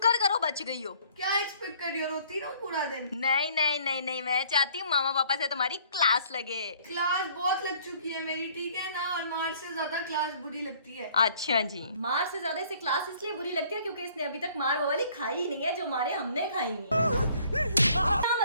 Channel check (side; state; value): both; inverted; correlation -0.58